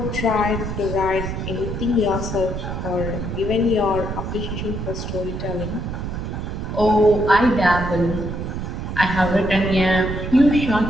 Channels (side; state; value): right; noise; rumble, 5 dB below the sound